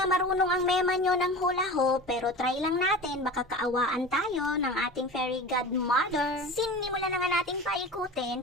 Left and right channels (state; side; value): normal; both; correlation 0.34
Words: marunong ang mema nyo ng hula hoop. Pero try lang natin. Baka kaawaan tayo ng ating fairy godmother. Sinimulan na nga nating